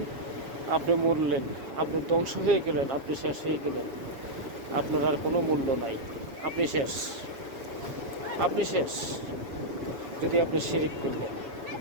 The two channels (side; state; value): left; late; 7.4 ms